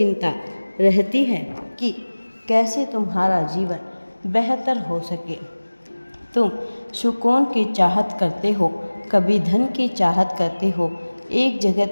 रहती है कि कैसे तुम्हारा जीवन बेहतर हो सके। तुम सुकून की चाहत करते हो, कभी धन की चाहत करते हो, एक जगह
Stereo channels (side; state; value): both; inverted; correlation -1.00